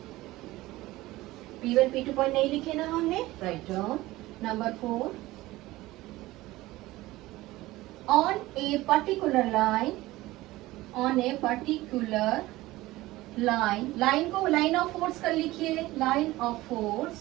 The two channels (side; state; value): left; quieter; 18.2 dB